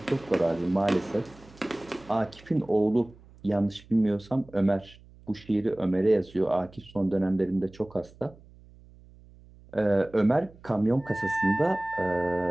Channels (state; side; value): noise; right; hum, 24 dB below the sound